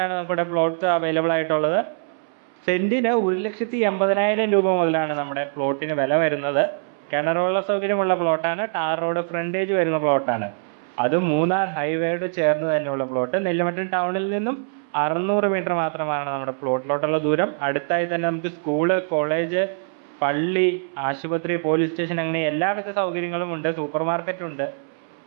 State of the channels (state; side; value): silent; left; 63 dB below the other